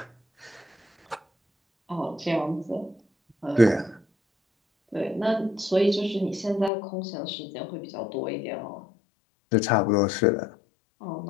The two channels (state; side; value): drops out; right; at 6.7 s